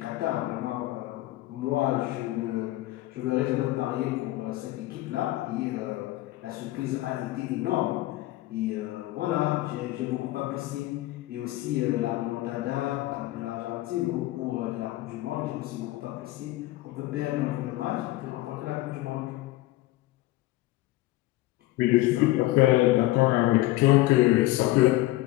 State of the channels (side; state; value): right; quieter; 17.4 dB